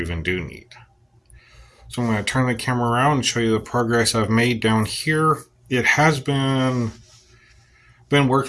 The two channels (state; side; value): identical; both; correlation 1.00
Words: do need. So I'm going to turn the camera around and show you the progress I've made down here. It has been